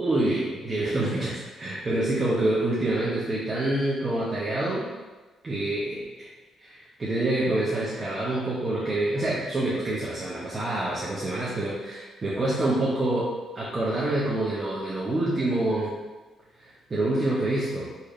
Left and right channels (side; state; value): both; normal; correlation 0.78